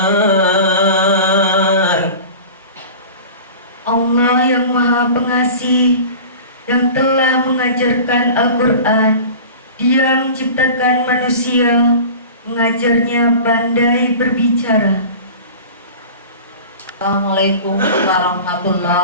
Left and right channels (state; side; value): inverted; both; correlation -0.37